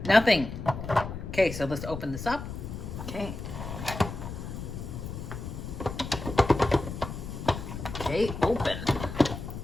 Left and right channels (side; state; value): left; noise; rumble, 8 dB below the sound